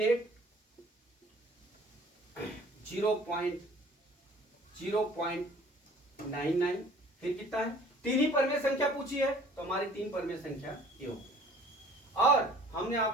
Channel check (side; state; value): both; normal; correlation 0.52